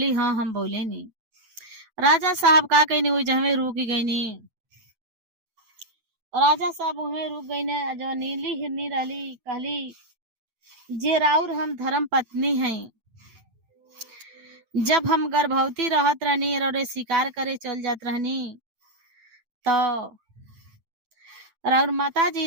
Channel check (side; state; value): left; late; 9.1 ms